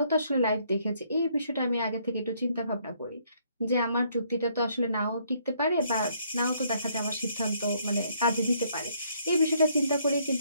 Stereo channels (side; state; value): both; inverted; correlation -0.68